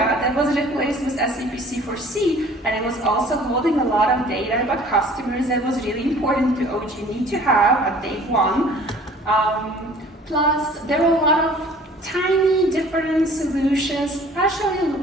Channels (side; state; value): both; normal; correlation 0.50